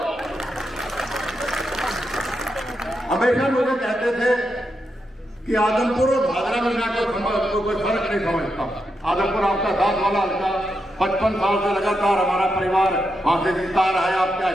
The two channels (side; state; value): both; normal; correlation 0.85